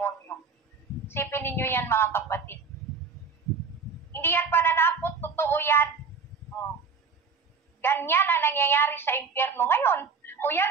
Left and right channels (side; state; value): left; quieter; 5.2 dB